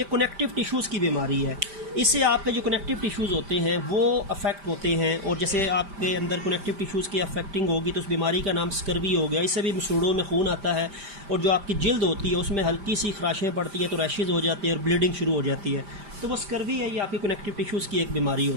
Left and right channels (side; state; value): left; late; 5.0 ms